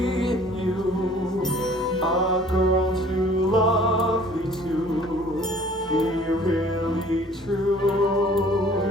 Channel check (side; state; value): both; normal; correlation 0.53